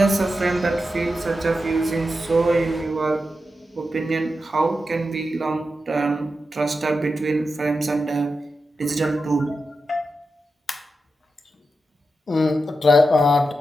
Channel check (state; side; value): normal; both; correlation 0.89